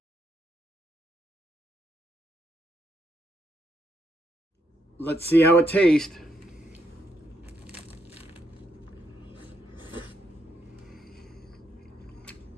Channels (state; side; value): normal; both; correlation 0.77